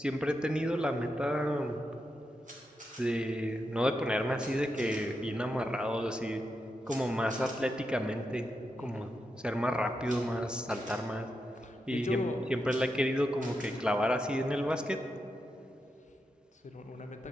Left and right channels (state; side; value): normal; both; correlation 0.86